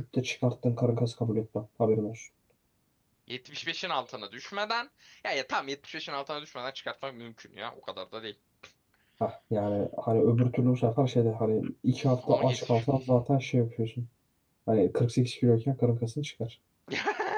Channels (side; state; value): both; identical; correlation 1.00